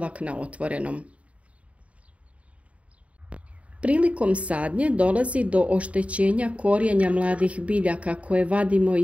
na otvorenom. Prilikom sadnje dolazi do oštećenja korijenja mladih biljaka koje vadimo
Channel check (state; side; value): late; left; 0.065 ms